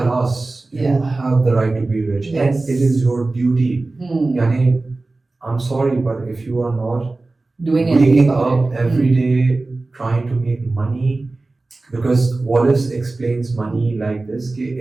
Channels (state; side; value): quieter; left; 3.3 dB